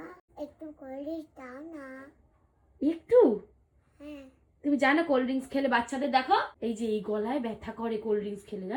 একটু কোলনিচ দাও না। একটু? হ্যাঁ তুমি জানো কোল্ড ড্রিঙ্কস খেলে বাচ্চাদের দেখো এই যে এই গলায় ব্যথা করে কোল্ড ড্রিঙ্কস খেলে,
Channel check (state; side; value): identical; both; correlation 1.00